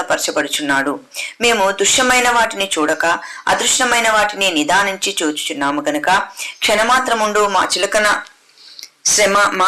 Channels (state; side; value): identical; both; correlation 1.00